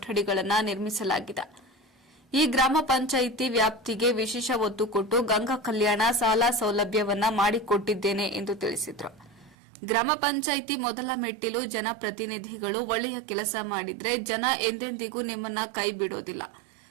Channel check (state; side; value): drops out; left; at 9.6 s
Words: ನಿರ್ಮಿಸಲಾಗಿದೆ. ಈ ಗ್ರಾಮ ಪಂಚಾಯಿತಿ ವ್ಯಾಪ್ತಿಗೆ ವಿಶೇಷ ಒತ್ತು ಕೊಟ್ಟು ಗಂಗಾ ಕಲ್ಯಾಣ ಸಾಲ ಸೌಲಭ್ಯವನ್ನ ಮಾಡಿಕೊಟ್ಟಿದ್ದೇನೆ ಎಂದು ತಿಳಿಸಿದರು. ಗ್ರಾಮ ಪಂಚಾಯಿತಿ ಮೊದಲ ಮೆಟ್ಟಿಲು ಜನಪ್ರತಿನಿಧಿಗಳು ಒಳ್ಳೆಯ ಕೆಲಸ ಮಾಡಿದ್ರೆ ಜನ ಎಂದೆಂದಿಗೂ ನಿಮ್ಮನ್ನ ಕೈ ಬಿಡೋದಿಲ್ಲ.